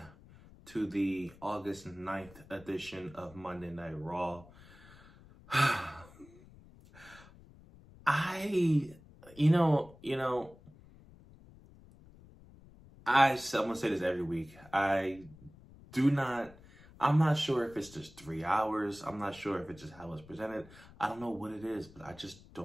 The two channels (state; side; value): noise; left; rumble, 22 dB below the sound